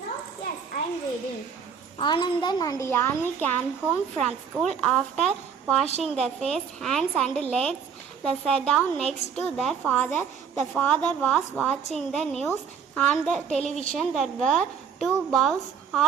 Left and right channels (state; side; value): quieter; left; 6.9 dB